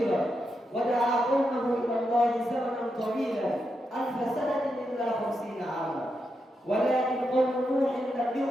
ودعا قومه إلى الله زمنا طويلا 1000 سنة إلا 50 عاما، ولكن قوم نوح لم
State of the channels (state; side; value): normal; both; correlation 0.85